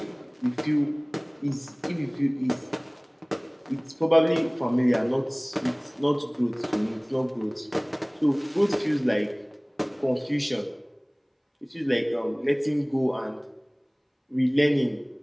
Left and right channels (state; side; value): identical; both; correlation 1.00